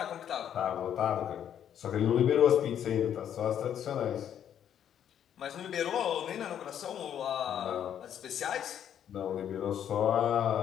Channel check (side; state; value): right; quieter; 9.6 dB